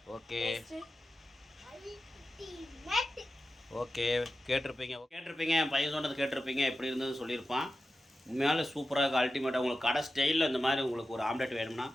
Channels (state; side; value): normal; both; correlation 0.93